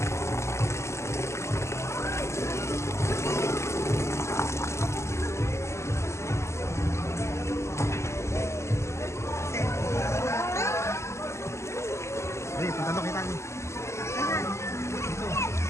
Hey, punta doon kita niyo.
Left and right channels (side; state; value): right; late; 0.13 ms